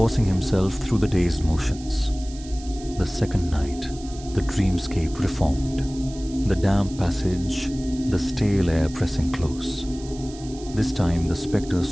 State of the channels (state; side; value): noise; right; hiss, 18 dB below the sound